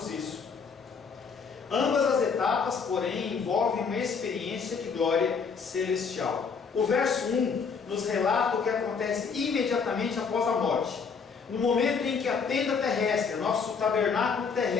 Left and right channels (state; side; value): quieter; right; 5.7 dB